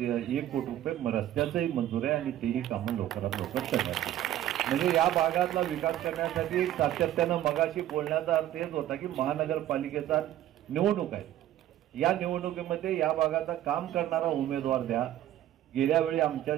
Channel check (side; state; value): left; quieter; 12.7 dB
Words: कोटी रुपये रस्त्याचंही मंजूर आहे आणि तेही कामं लवकरात लवकर करण्यात येईल। म्हणजे या भागातला विकास करण्यासाठी सातत्यानं मगाशी बोलण्याचा अर्थ हेच होता की महानगरपालिकेचा निवडणूक आहे, या निवडणुकीमध्ये या भागाचा काम करणारा उमेदवार द्या। गेल्या वेळी आमच्या